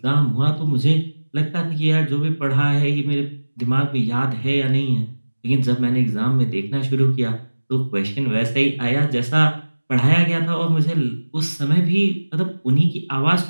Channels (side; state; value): both; inverted; correlation -1.00